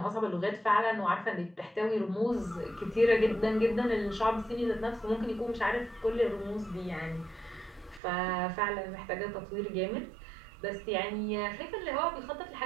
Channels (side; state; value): left; drops out; at 8.0 s